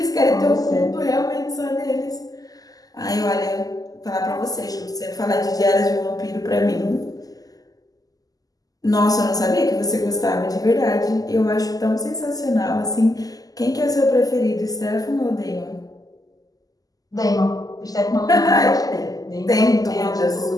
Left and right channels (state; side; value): late; right; 0.17 ms